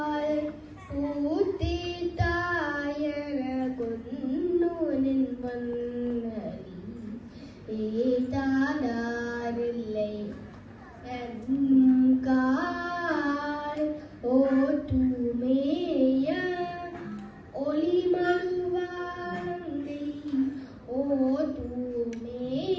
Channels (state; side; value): identical; both; correlation 1.00